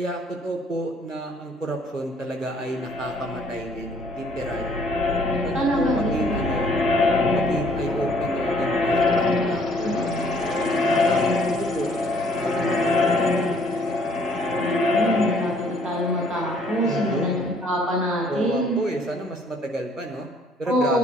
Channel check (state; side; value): normal; both; correlation 0.61